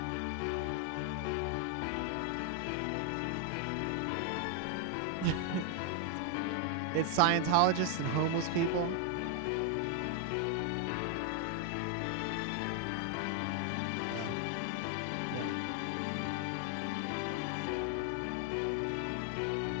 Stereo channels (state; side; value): different; both; correlation 0.00